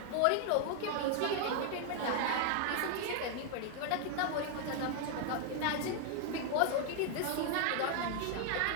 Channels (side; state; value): both; different; correlation 0.00